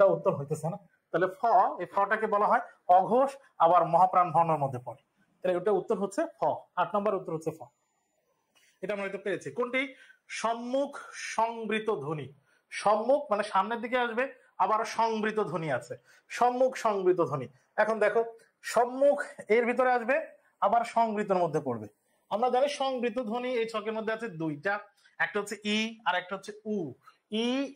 উত্তর হইতেছে না। তাহলে ফ, এই ফটাকে বলা হয় অঘোষ, আবার মহাপ্রাণ বর্ণের মধ্যে পড়ে। তাহলে এটা উত্তর হচ্ছে ফ, 8 নম্বর উত্তর হচ্ছে ফ। এটা আমরা হয়তো পেরেছি। কোনটি সম্মুখ সংবৃত ধ্বনি? সম্মুখ মানে সামনের দিকে আসবে, আবার সংবৃত ধ্বনি আছে, সম্মুখ সংবৃত ধ্বনি। এখন দেখো, সম্মুখ এর ভিতরে আসবে, আবার সংবৃতর মধ্যে পড়বে। আমরা জানি সংবৃত ধ্বনি এই ছকের মধ্যে আছে 2টা, একটা হচ্ছে ই আর একটা হচ্ছে উ। ই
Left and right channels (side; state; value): both; identical; correlation 1.00